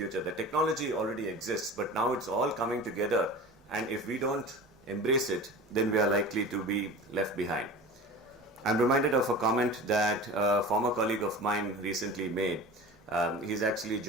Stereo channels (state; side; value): normal; both; correlation 0.35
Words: The technology already exists, but now it's all coming together, and if we don't embrace it, then we are likely to be left behind. I'm reminded of a comment that a former colleague of mine recently made. He's actually